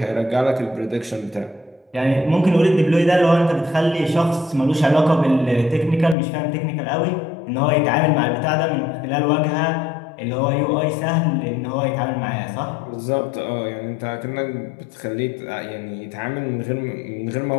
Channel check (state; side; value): drops out; right; at 6.2 s